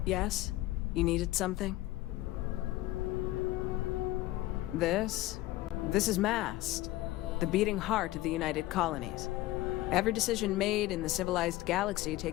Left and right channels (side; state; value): right; quieter; 17.0 dB